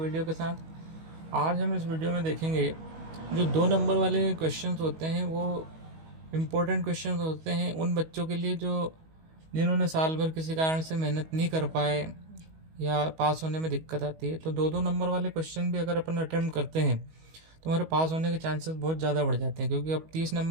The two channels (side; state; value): left; late; 19 ms